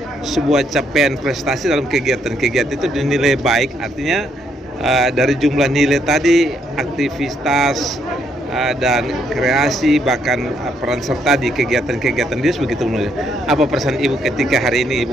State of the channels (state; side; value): normal; both; correlation 0.73